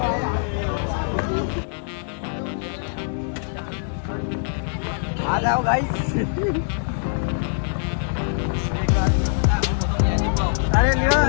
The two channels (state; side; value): silent; right; digital silence